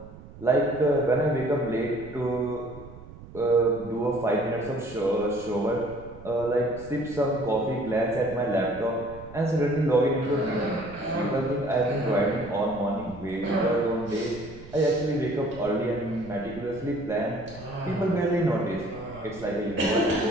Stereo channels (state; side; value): noise; right; rumble, 17 dB below the sound